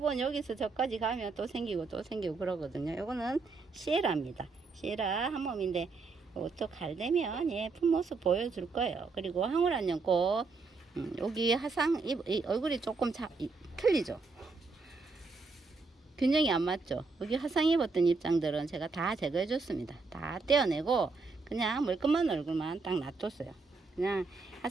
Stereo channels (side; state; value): left; quieter; 4.1 dB